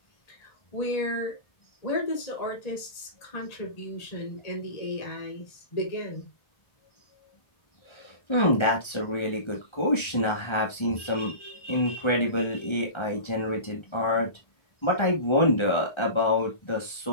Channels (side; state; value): right; late; 1.3 ms